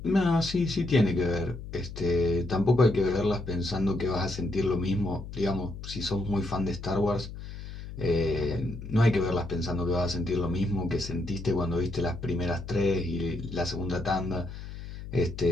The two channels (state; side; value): noise; left; hum, 11 dB below the sound